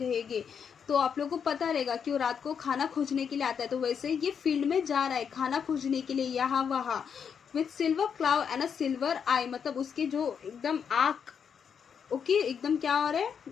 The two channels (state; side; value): quieter; right; 7.1 dB